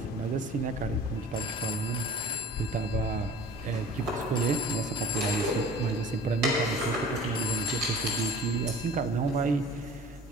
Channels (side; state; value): both; normal; correlation 0.43